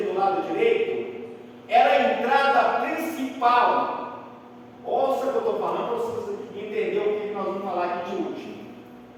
do lado direito, era a entrada principal. Ouça o que eu estou falando para vocês entenderem o que nós vamos falar aqui de último.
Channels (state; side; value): identical; both; correlation 1.00